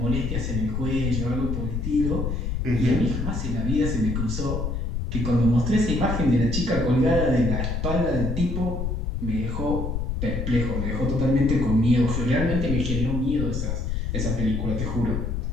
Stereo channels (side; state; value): left; noise; rumble, 2 dB below the sound